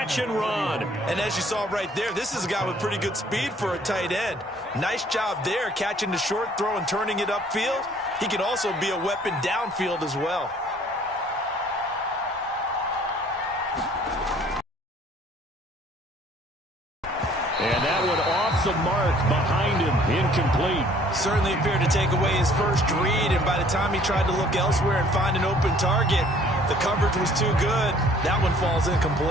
and run. And as you saw right there, this is a guy with pretty good speed for a tight end. Nice job there, catching the short throw and turning it upfield. He can also be a weapon downfield as well. And that one off the mark behind him, incomplete. Certainly appeared to take away his first read, and by the time he tried to look elsewhere and find an open target, the coverage was too good. That one falls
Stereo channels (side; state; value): both; normal; correlation 0.57